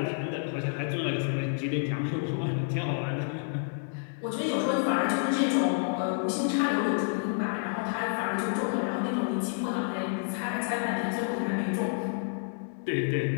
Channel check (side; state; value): right; silent; digital silence